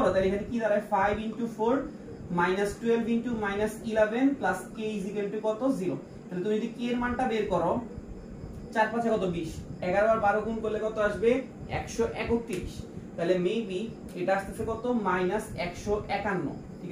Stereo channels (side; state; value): both; identical; correlation 1.00